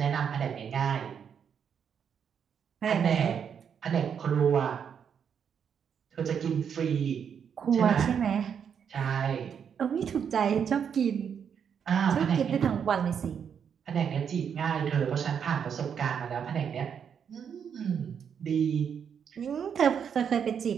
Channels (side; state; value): left; quieter; 7.6 dB